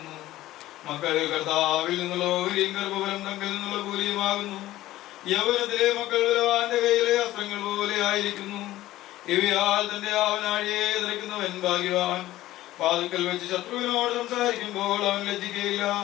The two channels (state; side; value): quieter; right; 15.6 dB